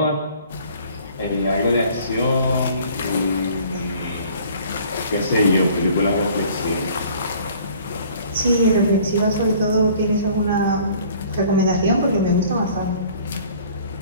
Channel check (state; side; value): inverted; both; correlation -0.53